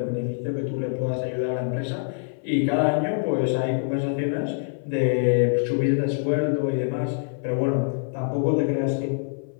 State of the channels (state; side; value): silent; right; 57 dB below the other